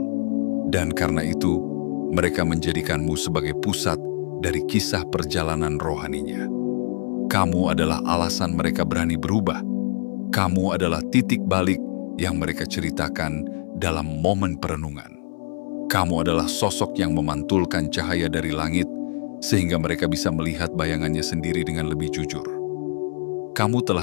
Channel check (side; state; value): right; silent; 62 dB below the other